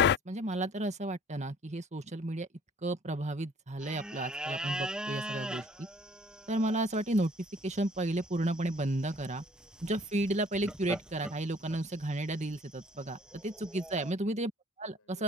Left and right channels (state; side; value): normal; both; correlation 0.56